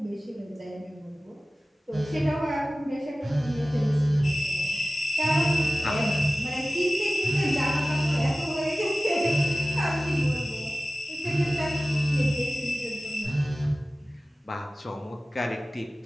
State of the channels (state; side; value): normal; both; correlation 0.96